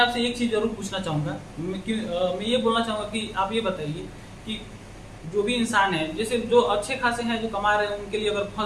एक चीज जरूर पूछना चाहूंगा। मैं ये बोलना चाहूंगा कि आप ये बताइए कि जो भी इंसान है, जैसे जो अच्छे खासे हैं जो कमा रहे हैं, उनके लिए अगर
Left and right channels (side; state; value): both; identical; correlation 1.00